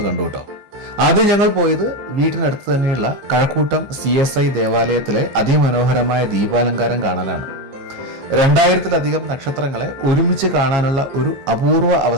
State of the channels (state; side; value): late; left; 15 ms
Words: കണ്ടു കേട്ടോ. ആദ്യം ഞങ്ങൾ പോയത് വീട്ടിനടുത്ത് തന്നെയുള്ള കഴക്കൂട്ടം CSI ദേവാലയത്തിലെ അതിമനോഹരമായ ദീപാലങ്കാരം കാണാനാണ്. 2000-ലധികം നക്ഷത്രങ്ങളെ ഒരുമിച്ച് കാണാനുള്ള ഒരു അപൂർവ